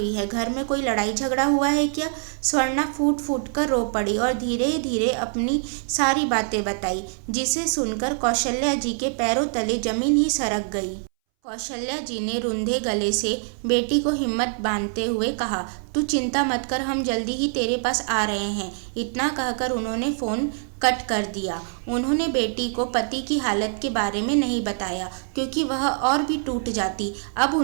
है, घर में कोई लड़ाई झगड़ा हुआ है क्या। स्वर्णा फूट फूट कर रो पड़ी और धीरे धीरे अपनी सारी बातें बताई, जिसे सुनकर कौशल्या जी के पैरों तले जमीन ही सरक गई। कौशल्या जी ने रुंधे गले से बेटी को हिम्मत बांधते हुए कहा, तू चिंता मत कर, हम जल्दी ही तेरे पास आ रहे हैं। इतना कहकर उन्होंने फ़ोन कट कर दिया। उन्होंने बेटी को पति की हालत के बारे में नहीं बताया क्योंकि वह और भी टूट जाती। अब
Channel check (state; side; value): silent; left; 61 dB below the other